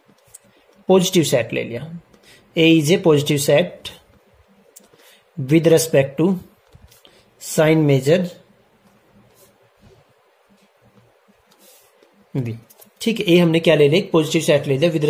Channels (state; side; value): identical; both; correlation 1.00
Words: positive set ले लिया, A is a positive set with respect to sign measure v. ठीक है, ए हमने क्या ले लिया, पॉजिटिव सेट ले लिया with